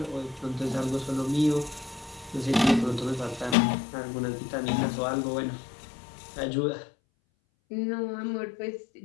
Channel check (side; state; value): right; drops out; at 3.6 s